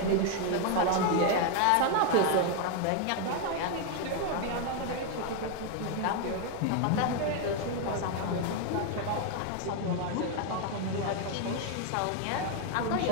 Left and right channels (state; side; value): different; both; correlation 0.01